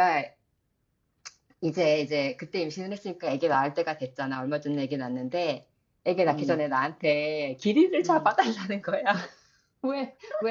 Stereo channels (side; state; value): both; identical; correlation 1.00